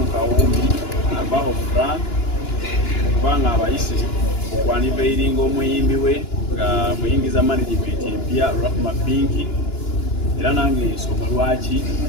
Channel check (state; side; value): late; right; 2.9 ms